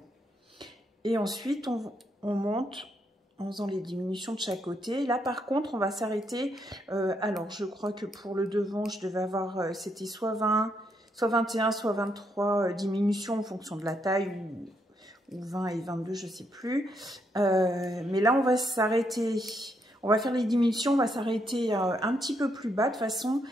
Et ensuite on monte en faisant les diminutions de chaque côté. Là par contre on va s'arrêter. Alors je crois que pour le devant je devais avoir, c'était soit 20, soit 21, soit 23 diminutions en fonction de la taille, ou 20 et 22, je ne sais plus. Mais là, on va s'arrêter, on va faire les diminutions, on va s'arrêter un petit peu plus bas de façon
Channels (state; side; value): normal; both; correlation 0.77